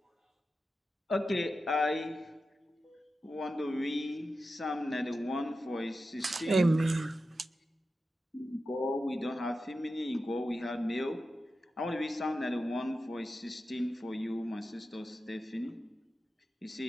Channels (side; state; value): both; normal; correlation 0.91